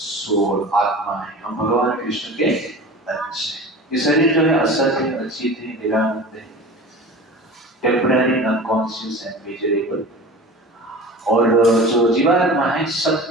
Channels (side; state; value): both; normal; correlation 0.36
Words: आत्मा है। हम भगवान कृष्ण के अंश हैं। ये शरीर जो है असत है, अचित है, निरानंद है, टेम्पररी, अनकॉन्शियस एंड मेजरेबल। और जो जीवात्मा है